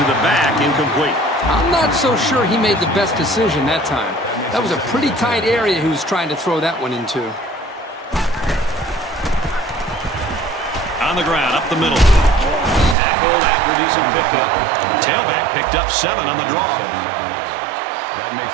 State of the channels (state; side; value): drops out; left; at 13.0 s